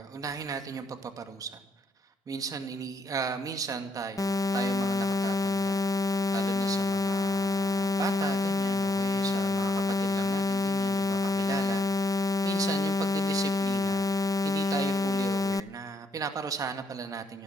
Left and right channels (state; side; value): normal; both; correlation 0.74